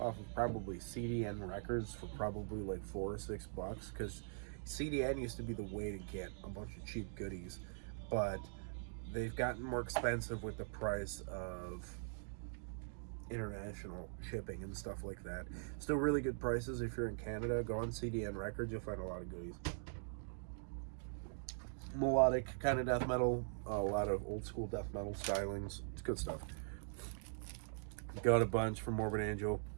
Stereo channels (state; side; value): silent; left; digital silence